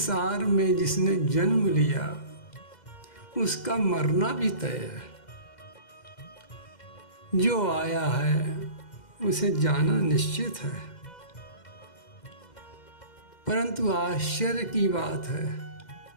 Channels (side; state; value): right; late; 2.1 ms